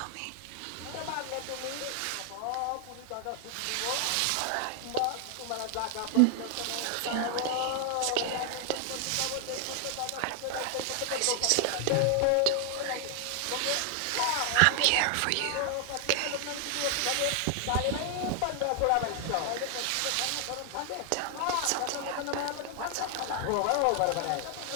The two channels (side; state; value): both; different; correlation 0.00